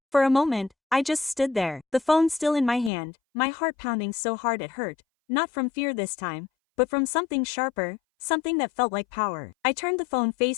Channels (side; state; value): right; drops out; at 2.9 s